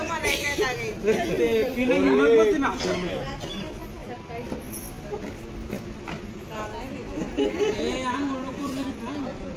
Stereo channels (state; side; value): identical; both; correlation 1.00